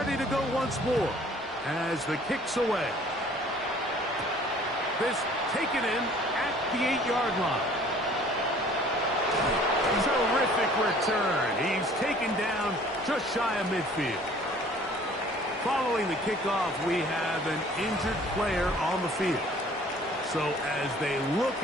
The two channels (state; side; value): normal; both; correlation 0.53